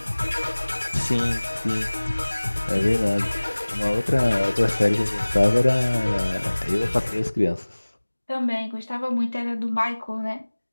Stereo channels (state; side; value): inverted; both; correlation -1.00